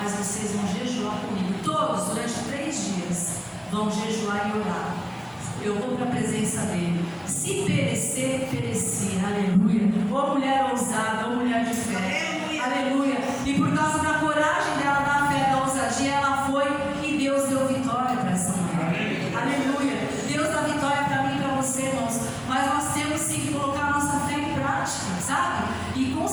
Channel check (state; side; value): identical; both; correlation 1.00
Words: vocês vão jejuar comigo. Todos, durante 3 dias, vão jejuar e orar. Eu vou para a presença dele. Se perecer, perecer. Aleluia. Ô mulher ousada, ô mulher de fé. Aleluia. E por causa da coragem dela, da fé, da ousadia, ela foi e Deus deu vitória para essa mulher. Aleluia. Deus dá vitória para mim e para você, irmãos. Mas nós temos sim que colocar a nossa fé em prática, sabe? E com